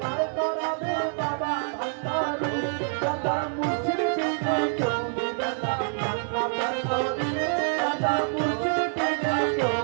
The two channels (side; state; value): left; silent; 59 dB below the other